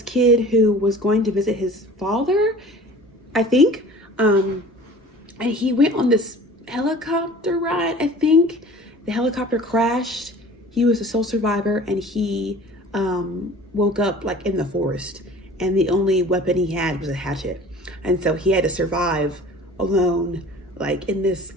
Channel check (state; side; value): normal; both; correlation 0.44